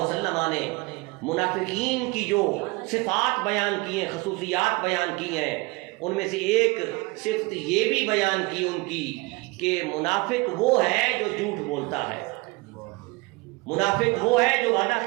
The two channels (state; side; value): quieter; left; 25.2 dB